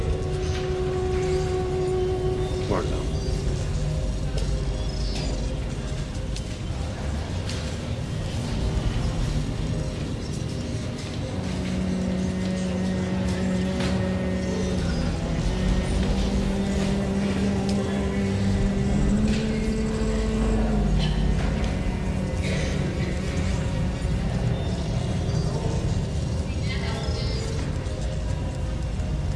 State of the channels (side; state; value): both; identical; correlation 1.00